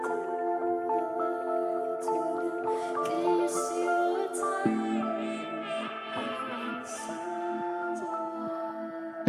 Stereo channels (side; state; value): both; identical; correlation 1.00